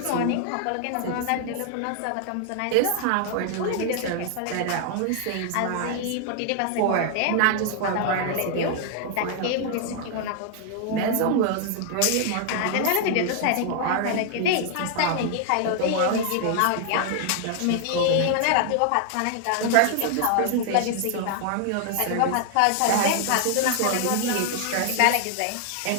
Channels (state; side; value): different; both; correlation 0.00